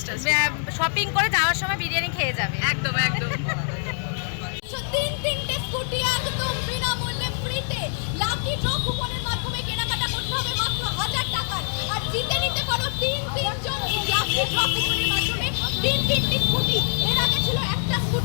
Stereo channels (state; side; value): silent; right; digital silence